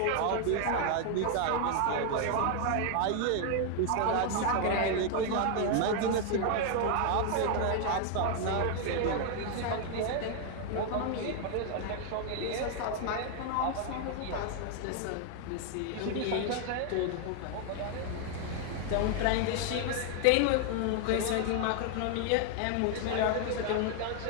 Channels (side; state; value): both; different; correlation 0.00